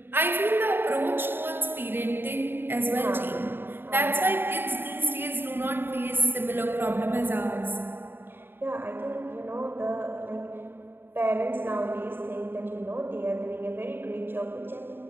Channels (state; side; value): late; left; 0.10 ms